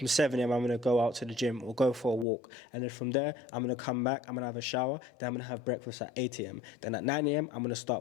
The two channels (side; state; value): right; drops out; at 2.2 s